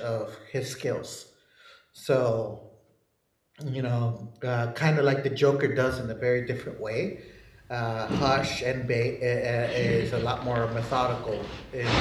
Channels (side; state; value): both; identical; correlation 1.00